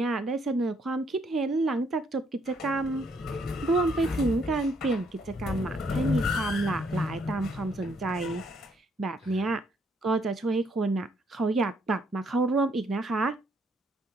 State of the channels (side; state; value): both; normal; correlation 0.70